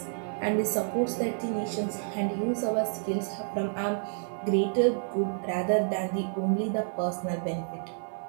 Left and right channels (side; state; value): left; silent; digital silence